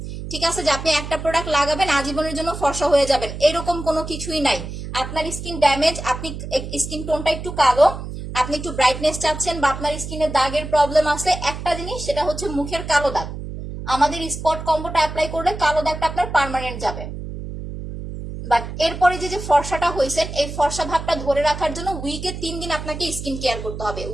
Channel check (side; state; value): right; noise; hum, 8 dB below the sound